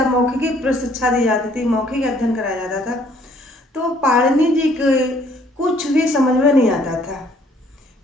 मौखिक शिक्षा दी जाती थी, मौखिक अध्ययन कराया जाता था। तो पाणिनि जी के कुछ भी समझ में नहीं आता था।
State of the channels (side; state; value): both; normal; correlation 0.62